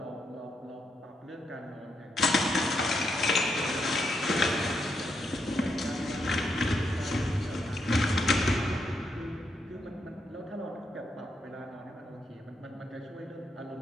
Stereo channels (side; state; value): both; normal; correlation 0.80